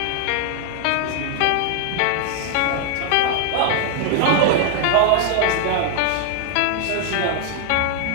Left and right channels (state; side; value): different; both; correlation 0.00